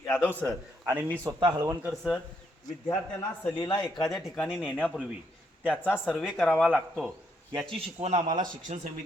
यादव सर आणि मी स्वतः हळवणकर सर। विद्यार्थ्यांना सहलीला एखाद्या ठिकाणी नेण्यापूर्वी त्याचा सर्वे करावा लागतो याची शिकवण आम्हाला शिक्षण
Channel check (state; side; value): normal; both; correlation 0.75